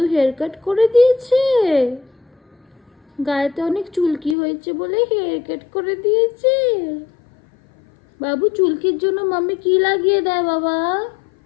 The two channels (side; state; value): right; drops out; at 4.4 s